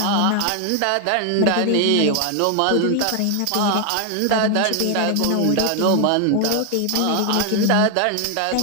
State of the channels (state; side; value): different; both; correlation 0.00